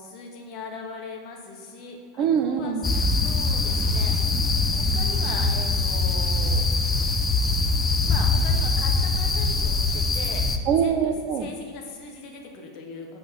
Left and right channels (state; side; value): normal; both; correlation 0.42